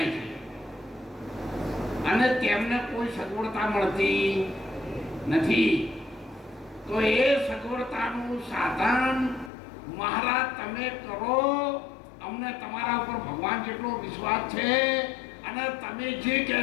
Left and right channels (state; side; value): drops out; right; at 9.5 s